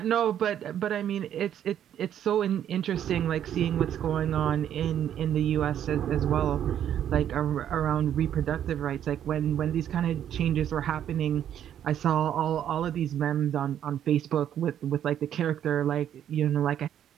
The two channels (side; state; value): left; quieter; 10.2 dB